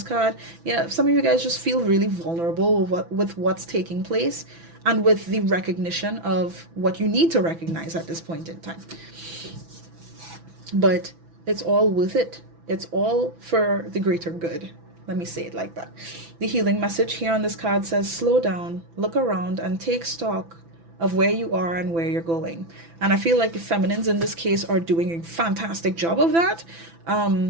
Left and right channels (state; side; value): late; left; 6.0 ms